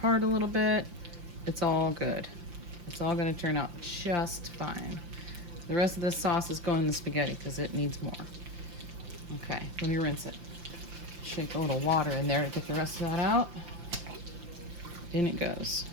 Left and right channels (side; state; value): left; late; 5.8 ms